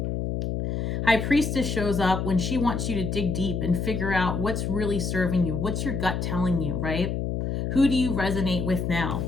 High Priestess shows up when she wants you to dig deep and figure out what's really serving you. What's your gut telling you, right? Who do you resonate with now?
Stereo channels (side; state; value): left; noise; hum, 1 dB below the sound